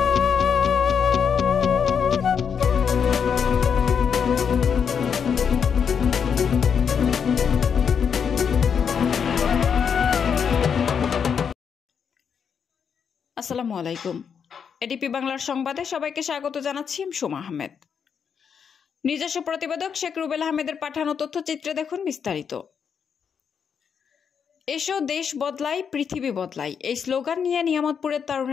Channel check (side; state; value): right; quieter; 7.0 dB